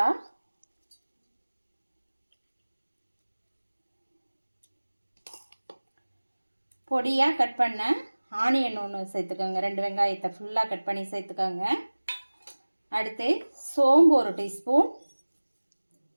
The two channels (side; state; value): both; inverted; correlation -1.00